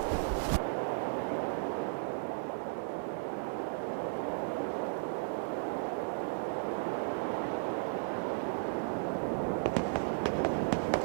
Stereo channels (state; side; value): silent; left; digital silence